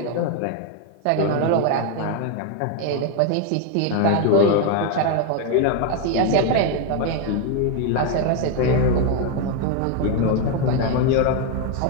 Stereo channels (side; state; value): both; different; correlation 0.01